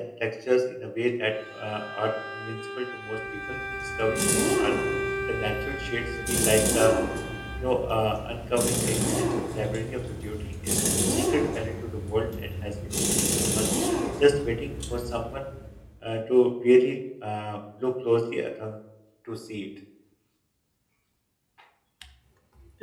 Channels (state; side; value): identical; both; correlation 1.00